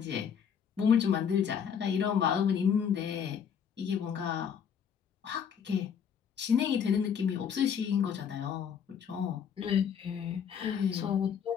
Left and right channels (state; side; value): quieter; right; 7.6 dB